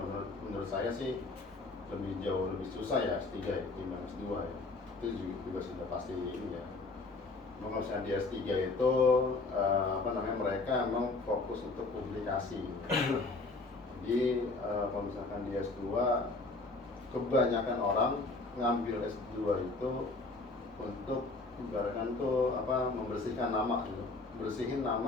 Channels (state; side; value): quieter; right; 3.4 dB